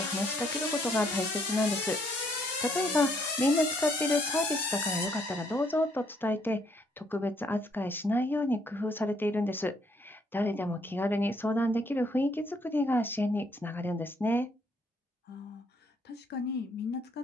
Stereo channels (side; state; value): both; normal; correlation 0.69